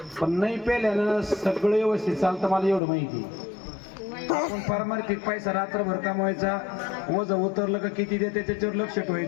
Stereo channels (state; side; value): drops out; right; at 2.8 s